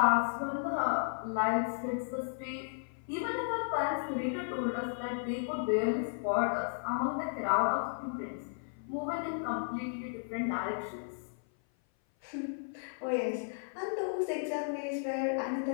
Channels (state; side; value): silent; right; 55 dB below the other